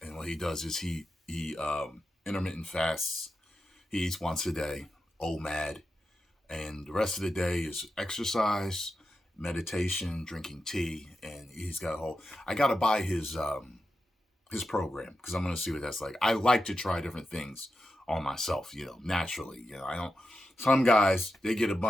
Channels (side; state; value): both; normal; correlation 0.89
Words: what he does is he intermittent fasts. He eats once a day, OMAD. And the rest of the day is exercise, meditation, drinking tea. And he's got I got to buy his program because I'm going to see what that's like. I like to try different things on myself, naturally. Some guys, they get a